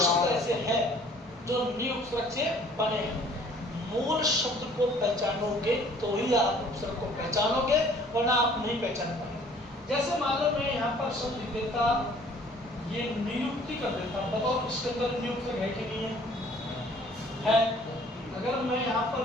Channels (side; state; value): both; normal; correlation 0.55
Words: ऐसे हैं जो नि उपसर्ग से बने हैं। मूल शब्द को पहचानोगे तो ही आप उपसर्ग को पहचानोगे, वरना आप नहीं पहचान पाएंगे। जैसे मान लो मैं यहाँ पर शब्द लिख देता, ये नियुक्ति कर देता, बताओ इसके अंदर नियुक्त है कि नहीं है? अगर मैं यहाँ पर